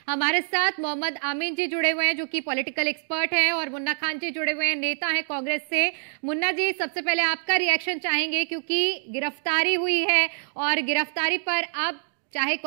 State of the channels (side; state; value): left; silent; digital silence